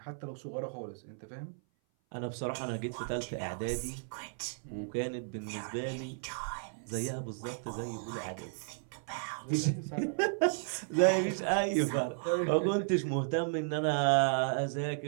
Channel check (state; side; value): silent; left; 55 dB below the other